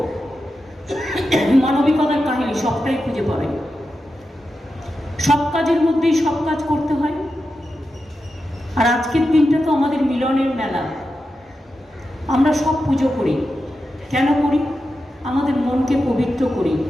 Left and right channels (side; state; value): both; normal; correlation 0.90